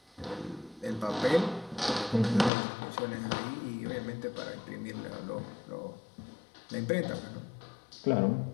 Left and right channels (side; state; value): right; drops out; at 2.5 s